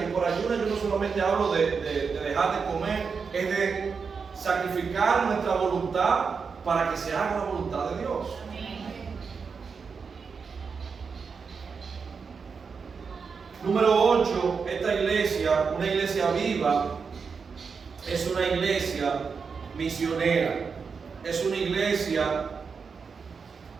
Y por ayuna yo no solamente hablo de dejar de comer, es de sacrificar nuestra voluntad para que se haga la voluntad de Dios. Número 8, esta iglesia, una iglesia viva, es una iglesia misionera. Es una iglesia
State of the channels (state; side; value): quieter; left; 5.5 dB